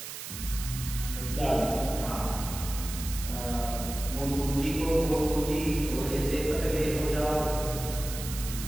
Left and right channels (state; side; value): noise; right; hiss, 9 dB below the sound